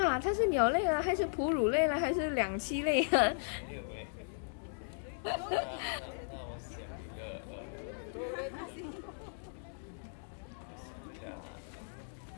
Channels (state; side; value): silent; right; digital silence